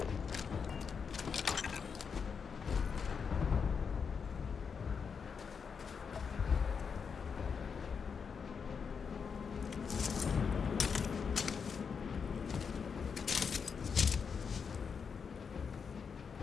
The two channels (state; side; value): quieter; right; 6.1 dB